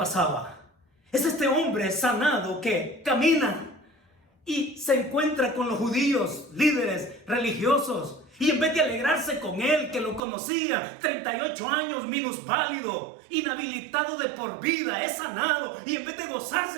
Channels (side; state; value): left; drops out; at 10.2 s